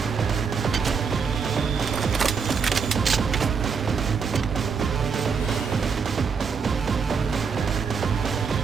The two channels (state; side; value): quieter; left; 5.8 dB